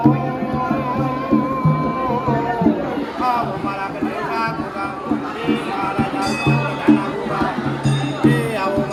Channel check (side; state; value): both; identical; correlation 1.00